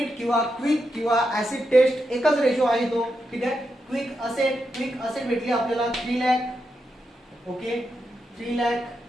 किंवा क्विक किंवा ऍसिड टेस्ट एकच रेशो आहे तो. ठीक आहे, क्विक असेट भेटली आपल्याला 3 लाख. ओके, 3 लाख.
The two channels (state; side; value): normal; both; correlation 0.85